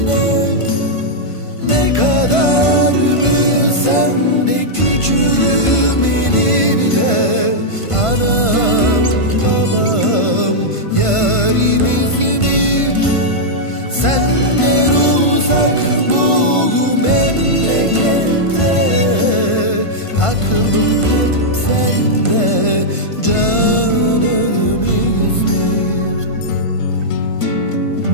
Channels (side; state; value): right; late; 1.5 ms